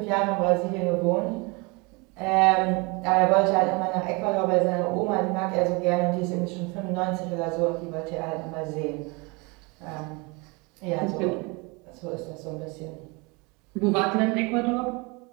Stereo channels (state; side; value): quieter; left; 28.1 dB